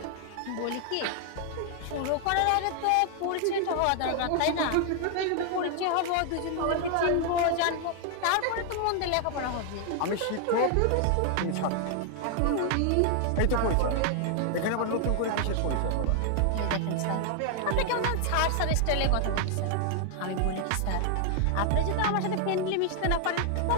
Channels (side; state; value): both; different; correlation 0.00